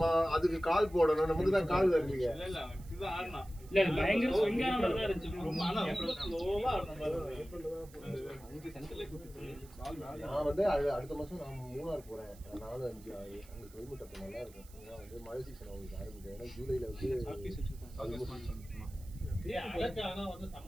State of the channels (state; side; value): noise; right; hiss, 23 dB below the sound